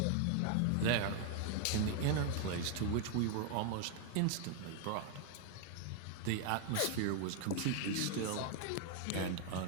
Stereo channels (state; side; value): different; both; correlation 0.01